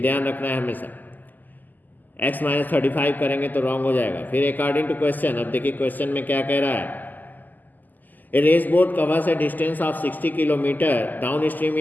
रखना है हमेशा। x माइनस 35 करेंगे तो रॉन्ग हो जाएगा। फिर अकॉर्डिंग टू क्वेश्चन, अब देखिए क्वेश्चन में क्या कह रहा है। A race boat covers a distance of 60 kilometre downstream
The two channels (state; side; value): late; right; 0.085 ms